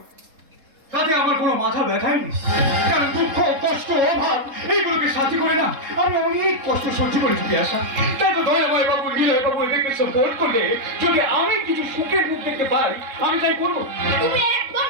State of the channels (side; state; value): left; late; 3.7 ms